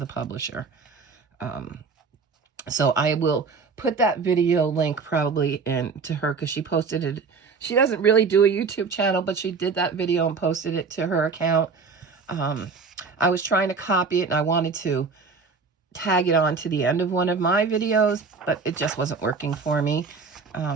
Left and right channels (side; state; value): left; quieter; 4.9 dB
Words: publisher. So I will put that video link probably into her, because she posted it. She doesn't really do a YouTube channel, but she did that video and posted it to her account. I was trying to copy it, and I wanted to tag it on to the end of one of my videos, but it just wasn't working for me.